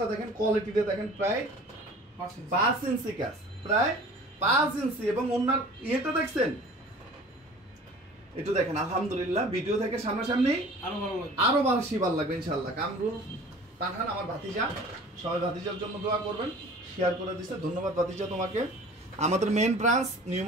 দেখেন, কোয়ালিটিটা দেখেন, প্রায় 5 ইঞ্চি কাজ, প্রায় 5 ইঞ্চি, এবং উন্নার ইয়েটা দেখছেন, একটু দেখেন আলহামদুলিল্লাহ। ভিডিও থেকে সামনাসামনি আরো বেশি ভালো লাগবে ইনশাআল্লাহ। কামরুল পাঠান আমার ভাতিজা, সবাই ভাতিজার জন্য দোয়া করবেন, শেয়ার করে দিচ্ছে, ধন্যবাদ ভাতিজা তোমাকে। আমাদের main branch New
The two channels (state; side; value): normal; both; correlation 0.44